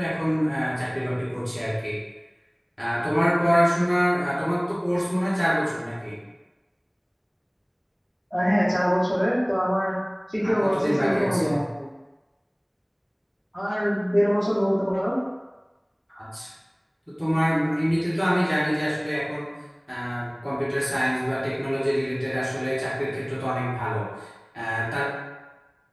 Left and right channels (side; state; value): both; identical; correlation 1.00